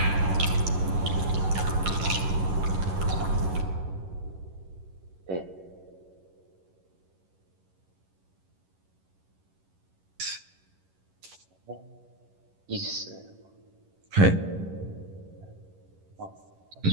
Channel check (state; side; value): late; left; 11 ms